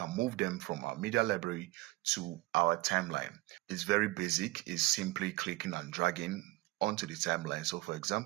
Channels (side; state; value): left; quieter; 20.1 dB